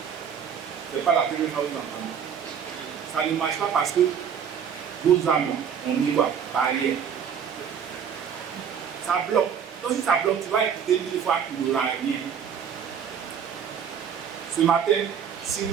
Ce n'est pas la première fois que vous entendez. Ça ne marche pas parce que vos âmes, on y voit, barrière. Ça bloque. Donc si ça bloque, tu vas écouter 1000 fois qu'il n'y aura rien. Ce matin, si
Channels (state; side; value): quieter; left; 7.7 dB